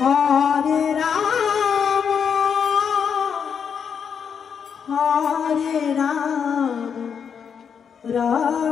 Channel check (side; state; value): right; quieter; 7.1 dB